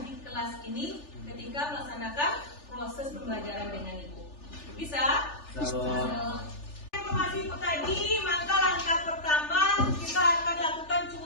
di kelas ini ketika melaksanakan proses pembelajaran dengan Ibu. Bisa? Informasi itu tadi, maka langkah pertama kita akan lakukan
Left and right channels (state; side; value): late; right; 3.4 ms